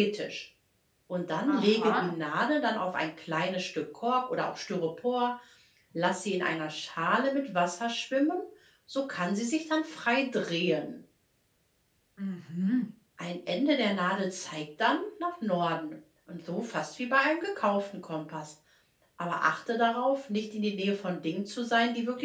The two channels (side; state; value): both; identical; correlation 1.00